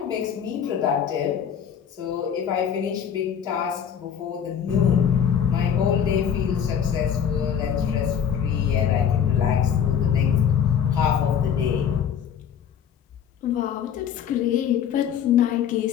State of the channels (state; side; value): quieter; right; 8.3 dB